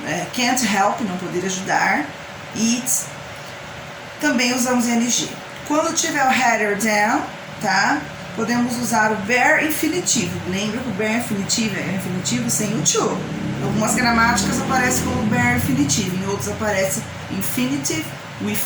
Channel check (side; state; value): both; identical; correlation 1.00